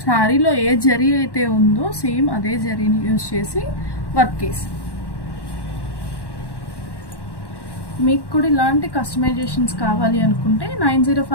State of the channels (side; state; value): right; late; 1.1 ms